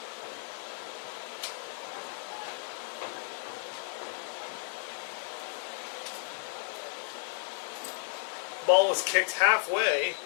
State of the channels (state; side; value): silent; right; 56 dB below the other